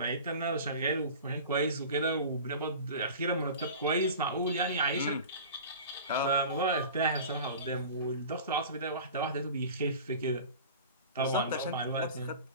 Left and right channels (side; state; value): both; inverted; correlation -0.37